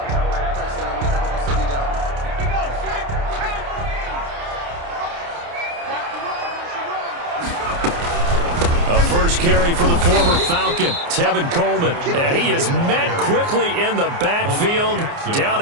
Carry for the former Falcon, Tevin Coleman, and he is met quickly in the backfield. Down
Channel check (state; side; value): late; left; 29 ms